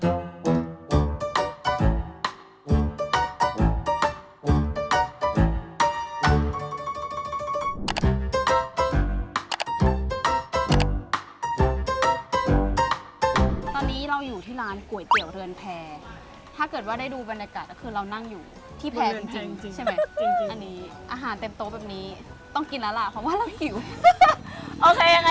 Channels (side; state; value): both; identical; correlation 1.00